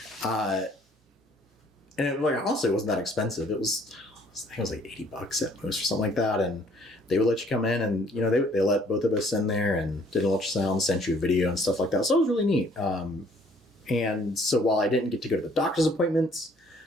And it, like, honestly, it wasn't that expensive. I think it was like $80 at most or something like that. And they would let you come in and, they let both of us in there and did an ultrasound, sent you a video and stuff like that. So it was really neat. And so while I didn't get to go to the doctor's appointments,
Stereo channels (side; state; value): both; normal; correlation 0.60